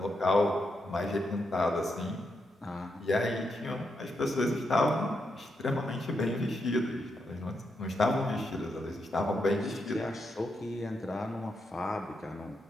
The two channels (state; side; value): normal; both; correlation 0.83